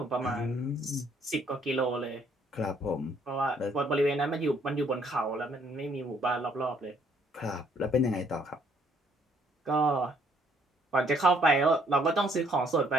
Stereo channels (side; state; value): both; normal; correlation 0.66